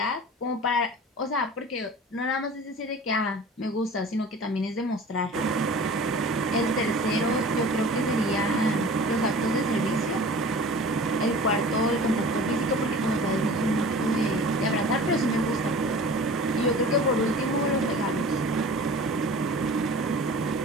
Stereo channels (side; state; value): both; normal; correlation 0.41